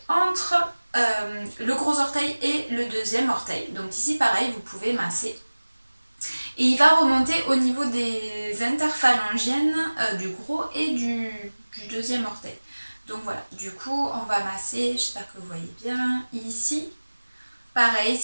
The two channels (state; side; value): inverted; both; correlation -1.00